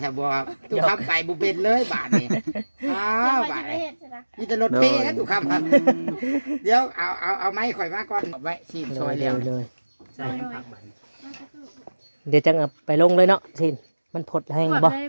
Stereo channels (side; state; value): both; inverted; correlation -1.00